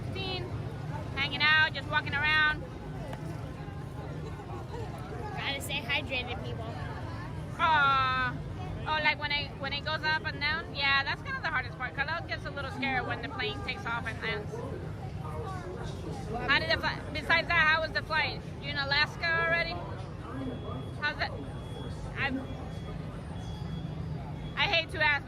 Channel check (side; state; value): both; identical; correlation 1.00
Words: Hanging out, just walking around. Gotta stay hydrated, people. Oh, like when it goes up and down. Yeah, that's kind of the hardest part. Khalil gets a little scared when the plane takes off and lands. How did the flight? Besides that, how was the flight? You in Alaska already? How's it? I hate to ask,